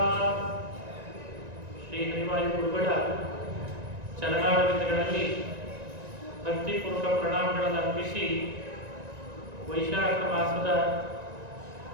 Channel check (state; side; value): late; left; 1.9 ms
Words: ಶ್ರೀ ಹರಿವಾಯು ಗುರುಗಳ ಚರಣಾರವಿಂದಗಳಲ್ಲಿ ಭಕ್ತಿಪೂರ್ವಕ ಪ್ರಣಾಮಗಳನ್ನು ಅರ್ಪಿಸಿ ವೈಶಾಖ ಮಾಸದ